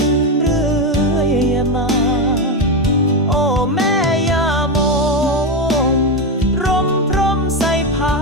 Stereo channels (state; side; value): normal; both; correlation 0.11